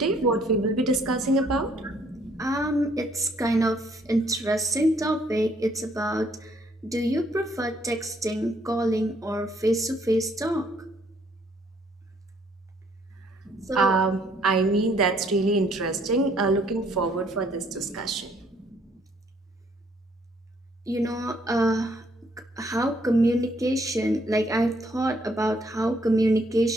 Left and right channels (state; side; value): normal; both; correlation 0.66